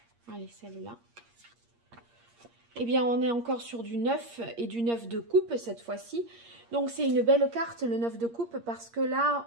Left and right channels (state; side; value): late; left; 8.6 ms